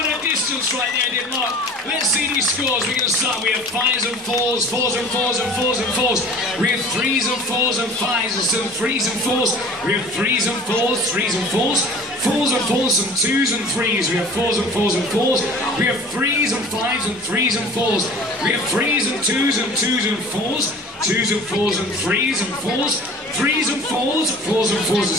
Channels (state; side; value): normal; both; correlation 0.44